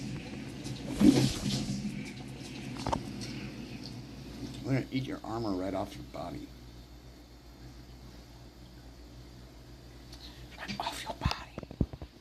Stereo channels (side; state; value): both; identical; correlation 1.00